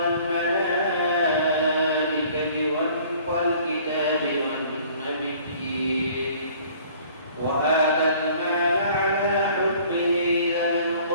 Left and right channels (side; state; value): both; inverted; correlation -0.53